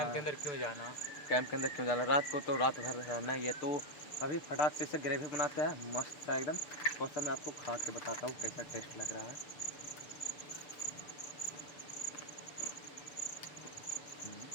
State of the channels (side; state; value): right; late; 6.6 ms